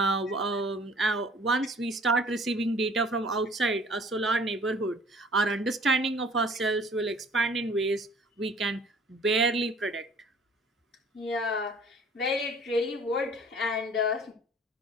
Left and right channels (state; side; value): normal; both; correlation 0.52